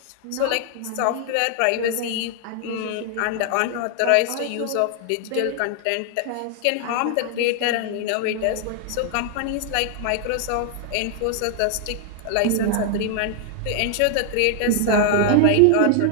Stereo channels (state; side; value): different; both; correlation 0.00